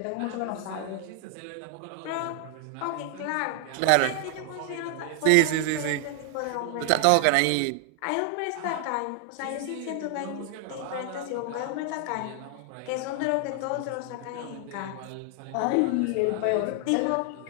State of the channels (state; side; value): different; both; correlation 0.00